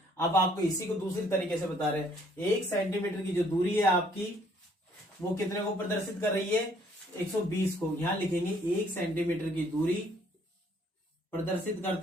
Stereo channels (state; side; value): normal; both; correlation 0.63